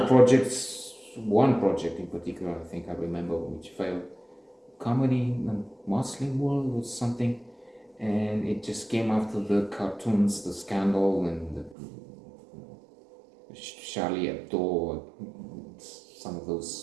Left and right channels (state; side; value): drops out; left; at 11.8 s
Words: projects, one project in particular, I think I remember, which failed, comedy in the Muslim world was something, and it just came after the cartoons, the scandal, and the Charlie Hebdo, some of